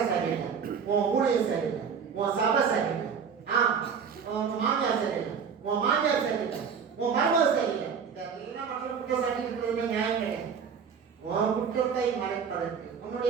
சரியில்லை, உன் ஊழியம் சரியில்லை, உன் சபை சரியில்லை, உன் மாமியார் சரியில்லை, உன் மாமியார் சரியில்லை, உன் மருமக சரியில்லை. இதெல்லாம் மற்ற குற்றம் சாட்டி இருக்கிறது நியாயம் கிடையாது. உன் குற்றத்தை மறைப்பதற்கு,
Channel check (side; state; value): left; quieter; 6.6 dB